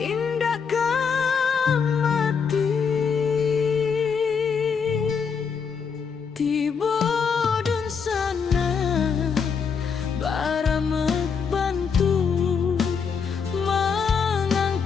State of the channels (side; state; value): right; quieter; 6.1 dB